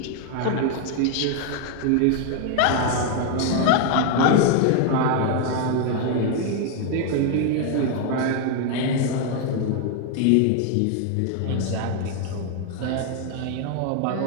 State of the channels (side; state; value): both; different; correlation 0.01